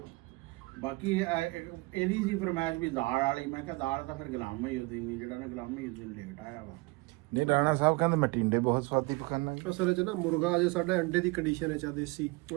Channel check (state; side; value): quieter; left; 25.0 dB